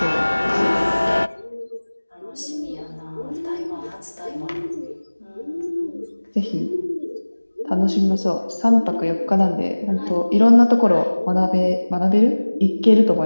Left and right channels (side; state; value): both; inverted; correlation -1.00